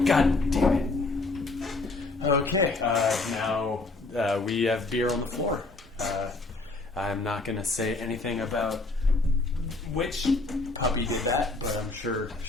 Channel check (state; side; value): quieter; right; 3.3 dB